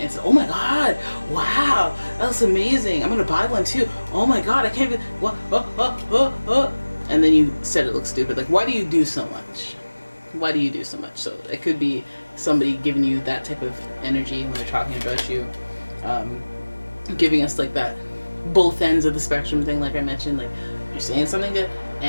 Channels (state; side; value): inverted; both; correlation -1.00